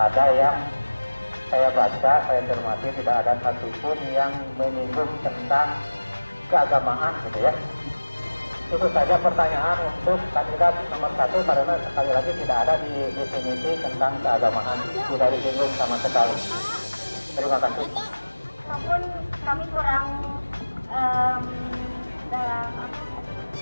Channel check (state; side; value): inverted; both; correlation -1.00